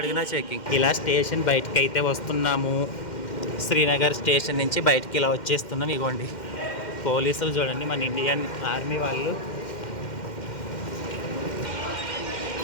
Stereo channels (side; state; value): right; late; 2.1 ms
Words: చెకింగ్. ఇలా స్టేషన్ బయటకు అయితే వస్తున్నాము. శ్రీనగర్ స్టేషన్ నుంచి బయటికి ఇలా వచ్చేస్తున్నాం. ఇగోండి పోలీసులు చూడండి, మన ఇండియన్ ఆర్మీ వాళ్ళు.